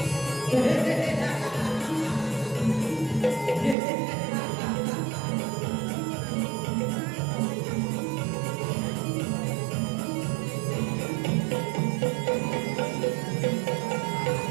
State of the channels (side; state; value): left; drops out; at 3.8 s